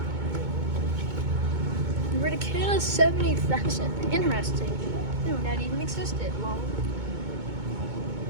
Verticana 70,000. Interesting. I didn't know that even existed. Long.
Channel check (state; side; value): late; left; 2.2 ms